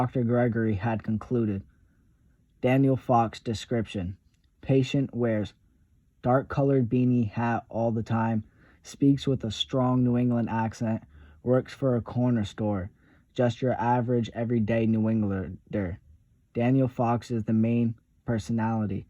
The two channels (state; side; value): identical; both; correlation 1.00